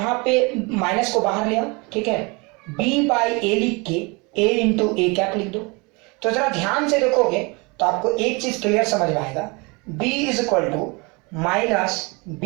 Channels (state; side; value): quieter; left; 28.3 dB